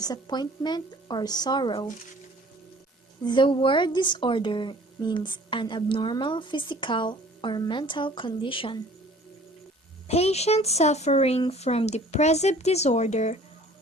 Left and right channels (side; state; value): both; normal; correlation 0.50